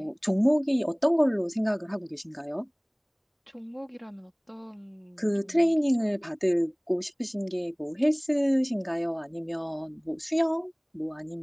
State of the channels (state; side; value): identical; both; correlation 1.00